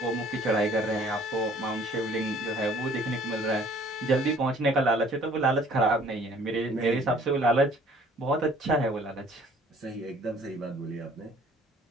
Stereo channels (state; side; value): normal; both; correlation 0.56